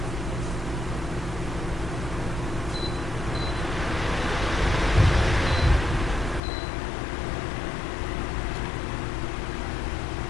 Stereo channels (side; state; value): right; drops out; at 6.4 s